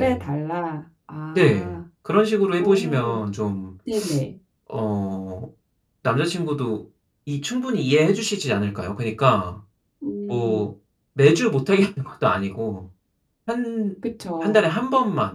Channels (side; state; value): both; identical; correlation 1.00